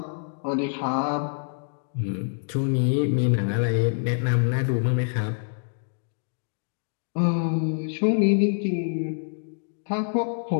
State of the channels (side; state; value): right; silent; 61 dB below the other